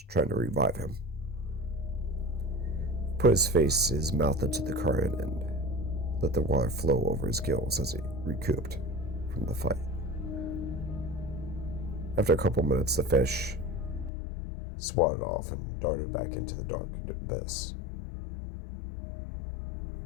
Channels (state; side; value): drops out; right; at 14.1 s